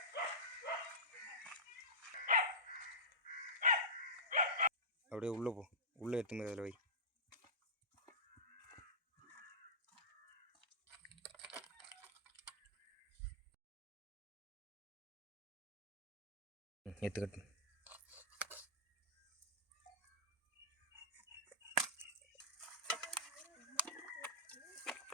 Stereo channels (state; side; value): normal; both; correlation -0.15